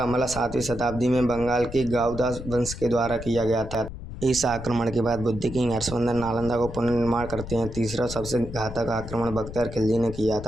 हमला 7वीं शताब्दी में बंगाल के गाउदास वंश के द्वारा किया गया था। इस आक्रमण के बाद बुद्ध किंग हर्षवर्धन नालंदा को पुनर्निर्माण करते हैं। तीसरा सबसे घातक आक्रमण बख्तियार खिलजी ने किया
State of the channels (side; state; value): left; noise; rumble, 11 dB below the sound